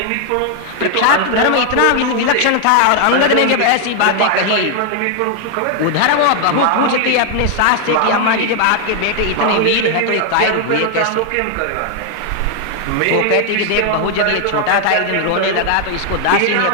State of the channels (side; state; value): both; different; correlation 0.00